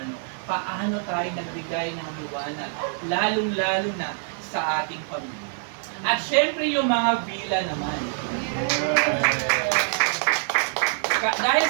Paano tayo nagbigay ng liwanag, lalong-lalo na sa ating pamilya. At syempre yung mga villa naman. Dahil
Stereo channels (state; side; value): silent; left; 62 dB below the other